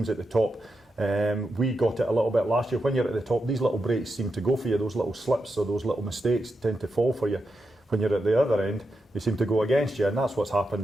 at the top. We got it a little bit last year. When you're at the top, these little breaks seem to go for you. Those little slips or those little mistakes tend to fall for you. When you're at the other end, they seem to go against you, and that's what's happened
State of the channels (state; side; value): normal; both; correlation 0.87